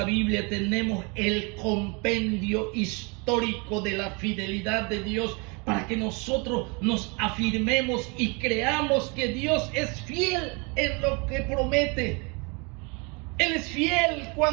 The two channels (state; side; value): quieter; left; 31.0 dB